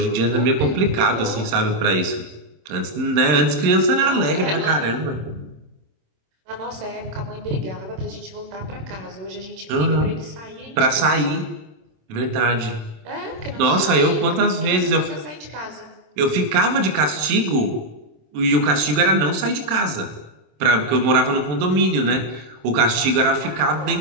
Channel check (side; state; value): left; late; 27 ms